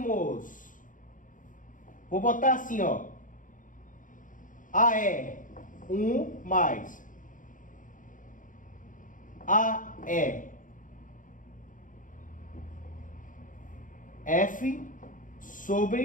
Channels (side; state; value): right; late; 0.38 ms